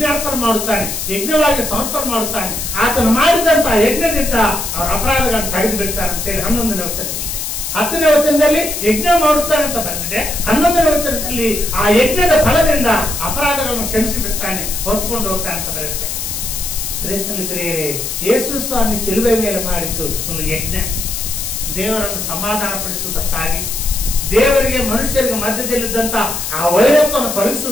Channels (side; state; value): left; noise; hiss, 4 dB below the sound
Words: ಮಾಡುತ್ತಾನೆ, ಯಜ್ಞವಾಗಿ ಸಮರ್ಪಣೆ ಮಾಡುತ್ತಾನೆ. ಆತನು ಮಾಡಿದಂತಹ ಯಜ್ಞದಿಂದ ಅವರ ಅಪರಾಧಗಳನ್ನು ತೆಗೆದು ಬಿಡ್ತಾನೆ ಅಂತೇಳಿ 11ನೇ ವಚನದಲ್ಲಿ. 10ನೇ ವಚನದಲ್ಲಿ ಯಜ್ಞ ಮಾಡುತ್ತಾನೆ ಅಂತ ಬಂದಿದೆ. 11ನೇ ವಚನದಲ್ಲಿ ಆ ಯಜ್ಞದ ಫಲದಿಂದ ಅಪರಾಧಗಳನ್ನು ಕ್ಷಮಿಸಿ ಬಿಡ್ತಾನೆ, ಹೊತ್ಕೊಂಡು ಹೋಗ್ತಾನೆ ಅಂತ ಬರುತ್ತೆ. ಪ್ರಿಯರೇ, ಯೇಸು ಸ್ವಾಮಿ ಶಿಲುಬೆ ಮೇಲೆ ಮಾಡಿದ್ದು ಒಂದು ಯಜ್ಞ. ದೇವರನ್ನು ಸಮಾಧಾನ ಪಡಿಸುವುದಕ್ಕಾಗಿ, ದೇವರಿಗೆ ಮನುಷ್ಯರಿಗೆ ಮಧ್ಯದಲ್ಲಿದ್ದಂತ ಆ ವೈರತ್ವವನ್ನು